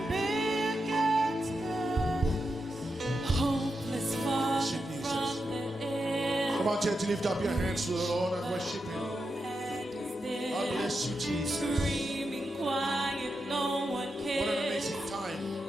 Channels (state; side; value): normal; both; correlation 0.87